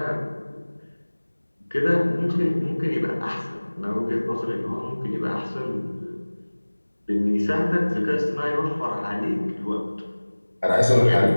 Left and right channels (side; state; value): both; inverted; correlation -1.00